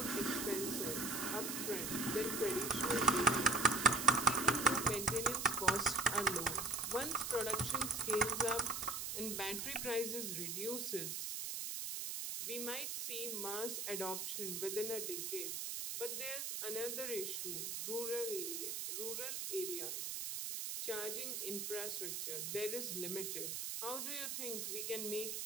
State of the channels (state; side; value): noise; right; hiss, 3 dB below the sound